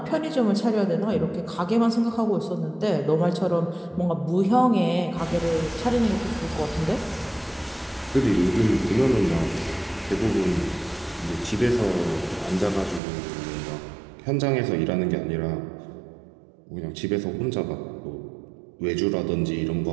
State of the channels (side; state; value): left; drops out; at 13.0 s